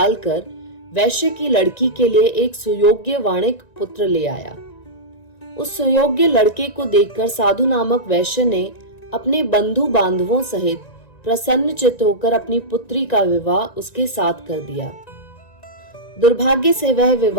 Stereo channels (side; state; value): right; late; 1.9 ms